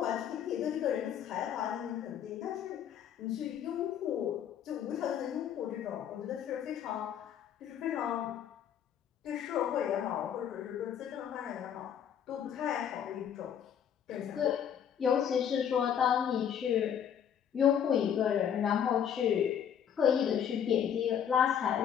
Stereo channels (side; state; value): right; quieter; 8.9 dB